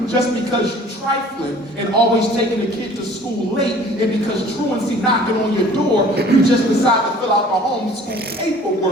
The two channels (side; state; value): both; normal; correlation 0.50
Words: just because you're trifling and always taking the kid to school late, and because truancy knocking on your door, you just decide to fill out the homeschool